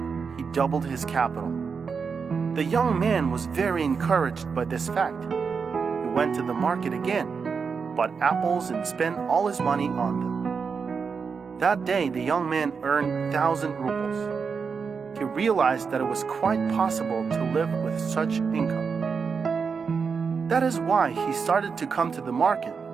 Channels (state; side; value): quieter; left; 5.6 dB